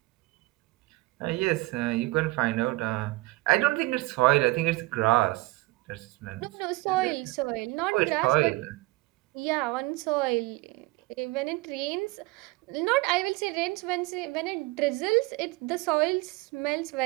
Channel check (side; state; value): left; quieter; 21.6 dB